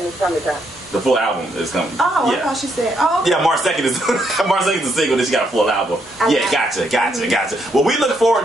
the summertime. The full album is coming. Oh, yeah. I thought she said, oh. Yeah, March 2nd is March 2nd is the single. Then she got a full album. Yeah, gotcha. Well, we look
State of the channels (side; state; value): both; normal; correlation 0.75